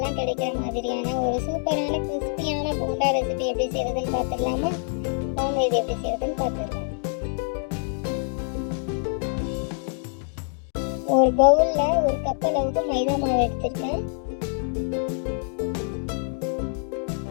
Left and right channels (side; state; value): right; silent; 60 dB below the other